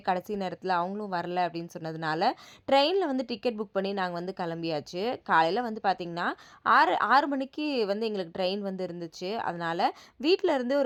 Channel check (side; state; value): both; identical; correlation 1.00